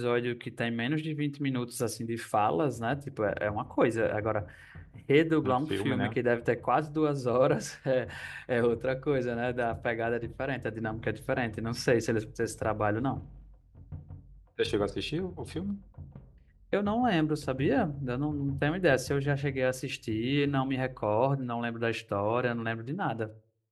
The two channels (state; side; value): identical; both; correlation 1.00